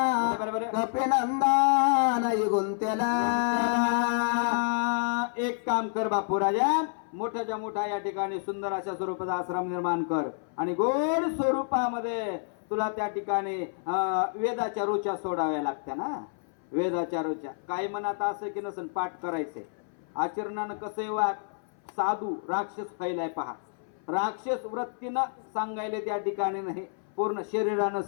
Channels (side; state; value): right; silent; 59 dB below the other